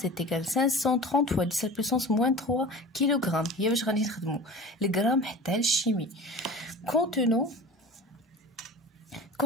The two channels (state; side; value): normal; both; correlation 0.37